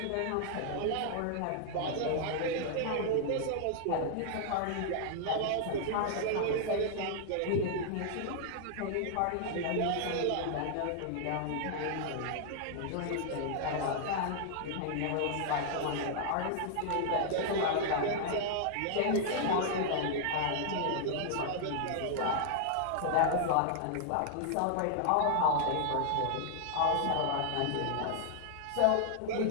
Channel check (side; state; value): both; different; correlation -0.01